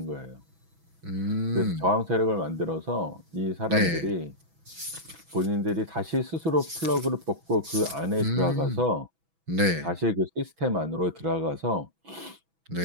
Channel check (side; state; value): left; late; 6.1 ms